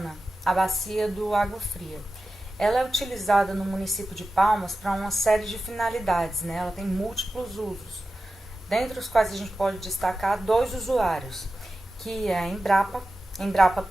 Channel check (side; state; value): both; normal; correlation 0.93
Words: a bacia do Água Fria. Ela é utilizada no município de Palmas para uma série de finalidades, né? Ela tem múltiplos usos, dentre os quais a gente pode destacar dois usuários, que é a Embrapa